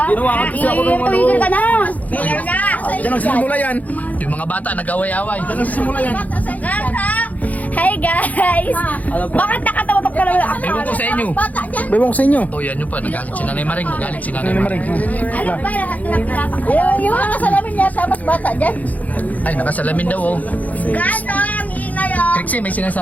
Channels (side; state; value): right; late; 0.077 ms